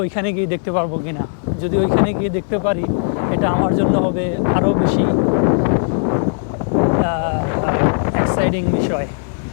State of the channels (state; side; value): silent; right; digital silence